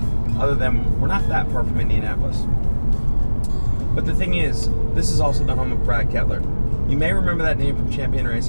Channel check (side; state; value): both; inverted; correlation -1.00